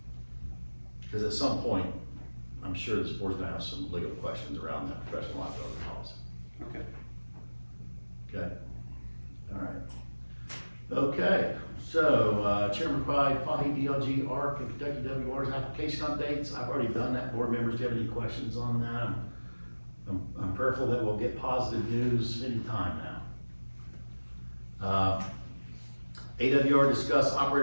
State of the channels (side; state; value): both; inverted; correlation -1.00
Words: Because at some point, I'm sure this board's gonna have some legal questions around that professional liability policy. Okay. Okay? All right. Okay, so, Chairman provide Fahey DLG ARC and Kentucky WR's application updates. I've already done that. Board members, do you have any questions on that? I'm prayerful that we'll get positive news anytime now. AWR discuss